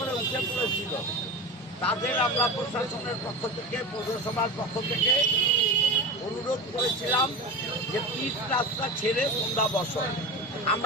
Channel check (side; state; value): both; normal; correlation 0.28